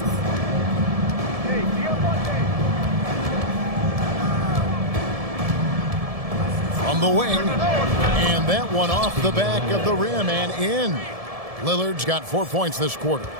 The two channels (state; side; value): late; left; 1.7 ms